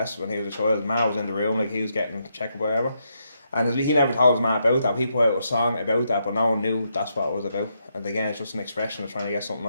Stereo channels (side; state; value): both; inverted; correlation -0.80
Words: when he was a child. His ma was in the room, like he was getting checked or whatever. And he never told his ma about that. He put out a song about that, but no one knew that's what it was about. And again, it's just an expression of trying to get something